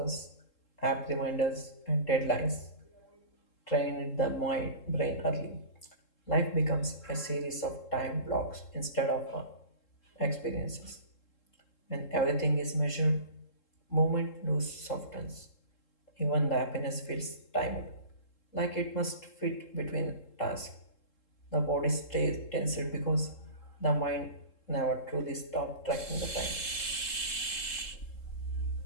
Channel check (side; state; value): right; late; 3.7 ms